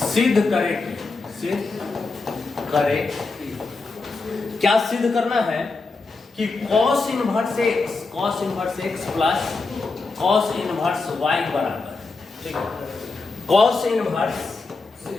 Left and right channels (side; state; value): right; quieter; 3.9 dB